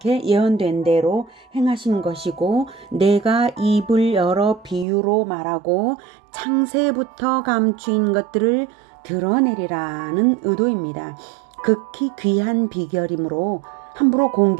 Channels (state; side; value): drops out; left; at 4.9 s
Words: 예언된 대로 행하신 것이고 내가 입을 열어 비유로 말하고 창세부터 감추인 것들을 드러내리라는 의도입니다. 극히 귀한 비결이므로 함부로